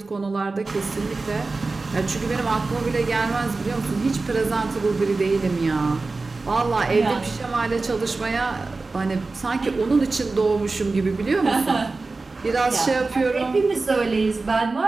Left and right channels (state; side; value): quieter; left; 3.7 dB